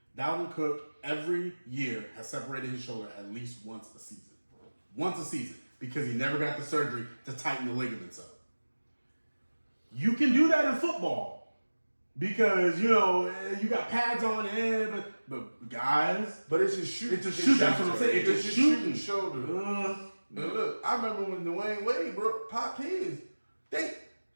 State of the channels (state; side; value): inverted; both; correlation -1.00